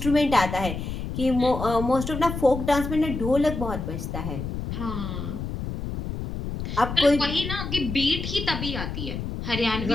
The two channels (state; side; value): noise; left; rumble, 5 dB below the sound